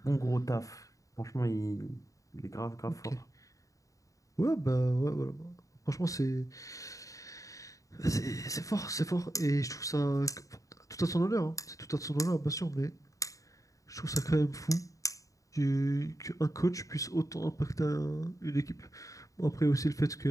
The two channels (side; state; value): right; late; 0.16 ms